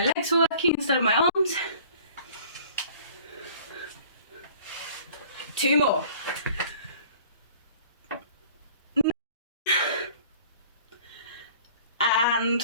legs were working instead of my arms. 2 more. 9. And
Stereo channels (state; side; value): inverted; both; correlation -0.50